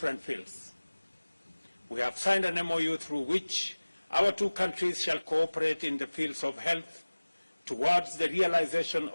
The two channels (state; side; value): inverted; both; correlation -1.00